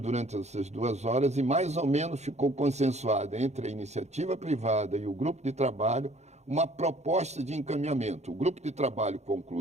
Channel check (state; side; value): late; left; 0.32 ms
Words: essas 2 horas e mais ou menos ficou consensuada entre a iniciativa privada e o grupo de trabalho uma proposta de encaminhamento. O grupo de trabalho